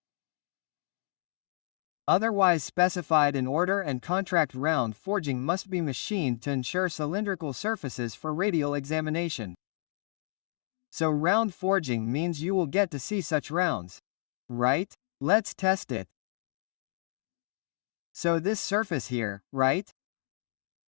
Otherwise specified in order and contract. Round forging must be machined to ensure cylindrical surfaces for radial examination. So round forging means you will get to see such rounds. Right? Let's test it. So this surface here, right?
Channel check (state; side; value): silent; right; digital silence